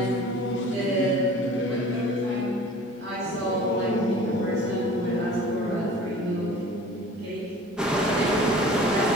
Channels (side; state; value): both; normal; correlation 0.44